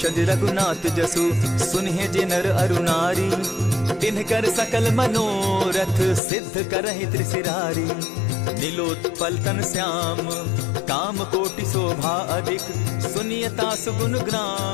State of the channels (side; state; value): right; drops out; at 6.2 s